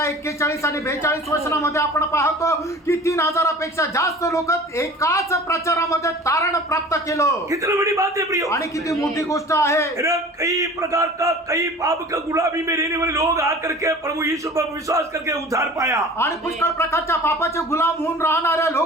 41 आणि 42 वचनामध्ये आपण पाहतो की 3000पेक्षा जास्त लोक एकाच प्रचारामध्ये तारण प्राप्त केलं। कितनी बड़ी बात है प्रियो, आणि किती मोठी गोष्ट आहे। कई प्रकार का, कई पाप का गुलामी में रहने वाले लोग आकर के प्रभु यीशु पर विश्वास करके उद्धार पाया। आणि पुष्कळ प्रकारच्या पापाचे गुलाम होऊन राहणाऱ्या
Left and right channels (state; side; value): normal; both; correlation 0.42